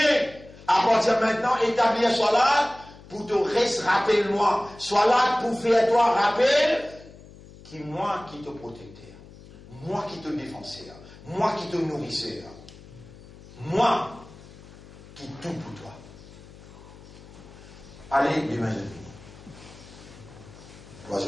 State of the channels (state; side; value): noise; left; hum, 20 dB below the sound